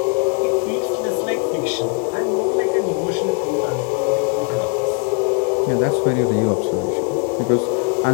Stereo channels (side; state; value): right; quieter; 31.4 dB